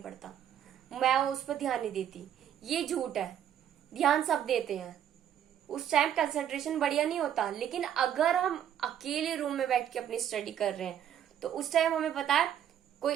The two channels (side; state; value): left; quieter; 10.0 dB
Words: पड़ता, मैं उस पर ध्यान नहीं देती। ये झूठ है, ध्यान सब देते हैं, उस टाइम कंसंट्रेशन बढ़िया नहीं होता। लेकिन अगर हम अकेले रूम में बैठ के अपनी स्टडी कर रहे हैं तो उस टाइम हमें पता है कोई